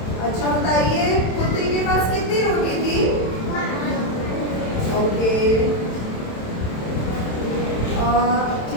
अच्छा बताइए, कुत्ते के पास कितनी रोटी थी? ओके,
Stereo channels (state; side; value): late; right; 27 ms